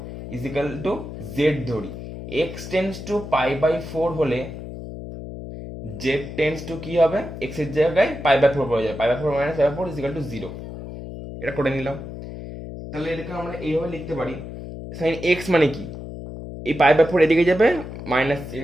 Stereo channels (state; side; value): noise; left; hum, 10 dB below the sound